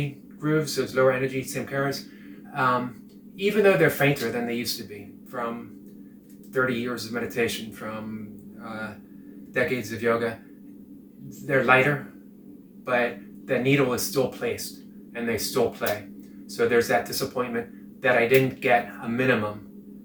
grooves, those lower energy samskaras, even though they're fainter than they used to be from 30 years of meditation, from decades of yoga, they're lighter, but the needle is still placed and they still play. So there's that disappointment that I didn't get a minimum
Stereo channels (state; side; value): identical; both; correlation 1.00